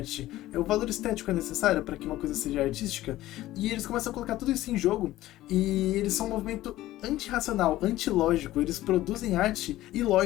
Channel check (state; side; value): quieter; right; 15.6 dB